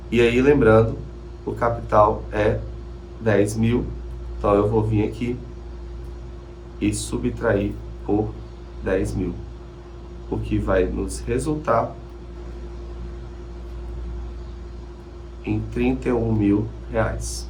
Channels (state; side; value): identical; both; correlation 1.00